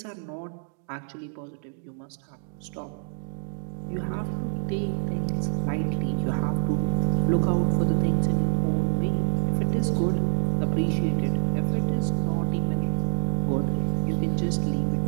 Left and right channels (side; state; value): left; silent; 59 dB below the other